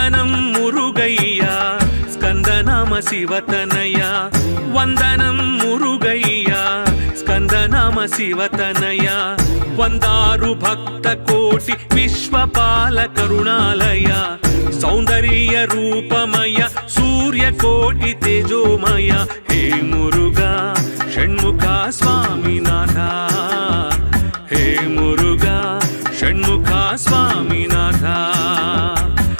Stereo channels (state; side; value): inverted; both; correlation -1.00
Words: मुरुगय्या स्कंदनाम शिवतनया वंदनं मुरुगय्या स्कंदनाम शिवतनया वंदारु भक्त कोटि विश्वपाल करुणालय सौंदर्य रूपमय सूर्यकोटि तेजोमय हे मुरुगा षण्मुखा स्वामीनाथ हे मुरुगा षण्मुखा स्वामीनाथ